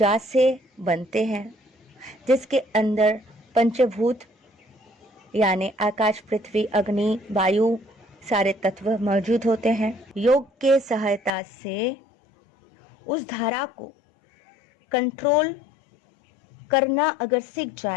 से बनते हैं, जिसके अंदर पंचभूत यानी आकाश, पृथ्वी, अग्नि, वायु सारे तत्व मौजूद होते हैं। योग के सहायता से उस धारा को कंट्रोल करना अगर सीख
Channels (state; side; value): drops out; right; at 11.4 s